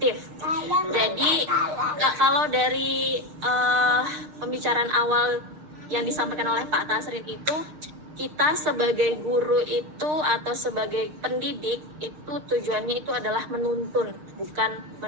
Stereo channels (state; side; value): late; left; 6.6 ms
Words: Jadi kalau dari pembicaraan awal yang disampaikan oleh Pak Tasrin itu, kita sebagai guru itu atau sebagai pendidik itu tujuannya itu adalah menuntun, bukan